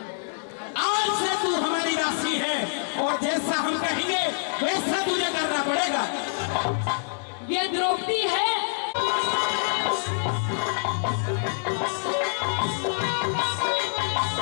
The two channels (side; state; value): right; silent; digital silence